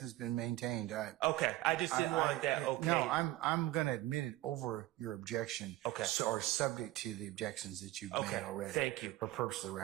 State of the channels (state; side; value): quieter; left; 17.0 dB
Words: been maintained. Okay, I just didn't want that. Okay. No, I'm going to admit it over your objection. Okay. Or subject to the objections that you've Okay, made already. thank you. For purpose of the